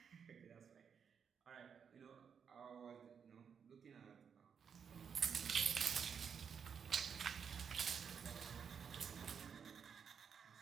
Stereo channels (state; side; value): quieter; left; 6.9 dB